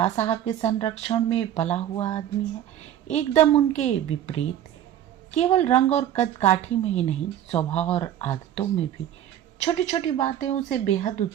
साहब के संरक्षण में पला हुआ आदमी है? एकदम उनके विपरीत। केवल रंग और कद काठी में ही नहीं, स्वभाव और आदतों में भी छोटी छोटी बातें उसे बेहद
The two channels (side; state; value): left; quieter; 11.1 dB